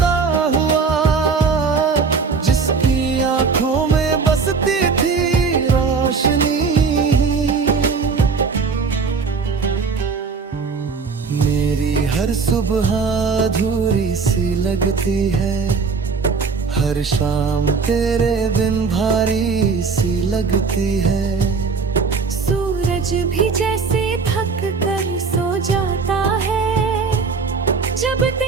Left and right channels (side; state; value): left; quieter; 5.0 dB